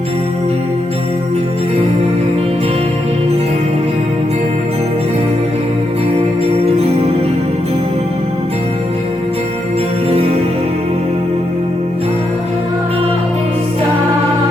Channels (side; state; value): both; normal; correlation 0.82